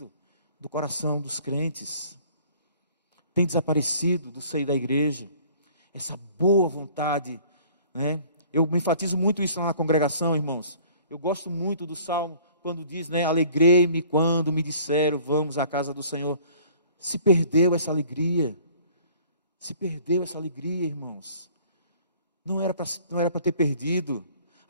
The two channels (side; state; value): both; inverted; correlation -0.53